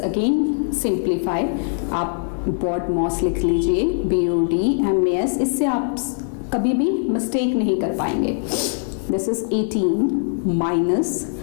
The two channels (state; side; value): silent; right; digital silence